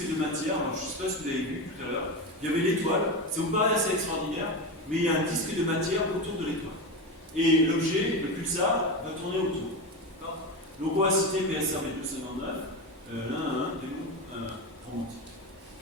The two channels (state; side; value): normal; both; correlation 0.19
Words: de matière. Alors, je ne sais pas si vous avez vu tout à l'heure. Il y avait l'étoile, ça vous paraît assez extraordinaire, mais il y a un disque de matière autour de l'étoile. Et l'objet, le pulsar, va tourner autour. Donc on va citer PSRB 259, romantique.